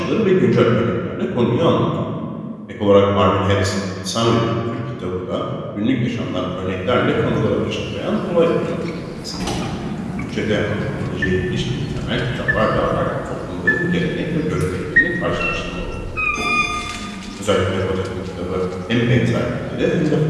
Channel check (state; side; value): identical; both; correlation 1.00